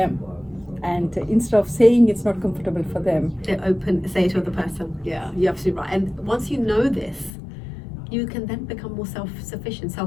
And instead of saying it's not comfortable for them, they say it to the person. Yeah, you're absolutely right. And once you know this, you can then become more self-sufficient,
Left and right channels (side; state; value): right; drops out; at 7.3 s